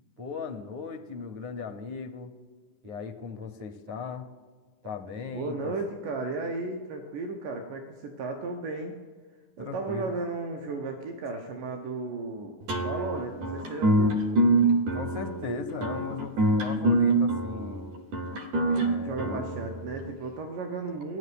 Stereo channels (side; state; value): left; late; 10 ms